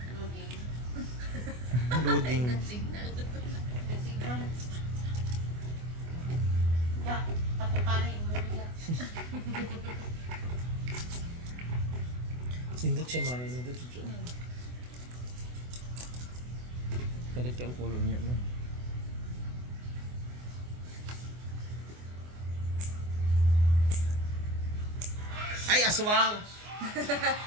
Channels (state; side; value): late; left; 24 ms